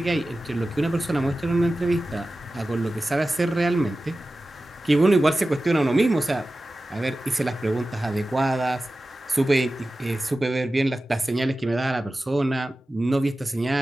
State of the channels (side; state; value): both; normal; correlation 0.95